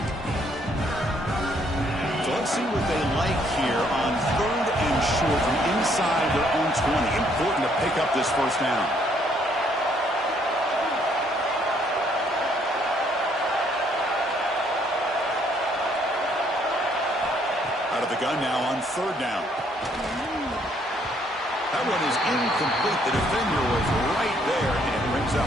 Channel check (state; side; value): normal; both; correlation 0.67